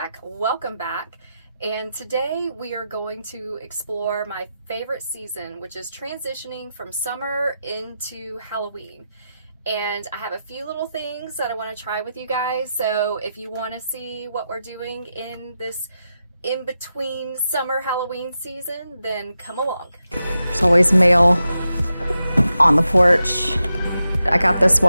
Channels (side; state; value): both; inverted; correlation -0.89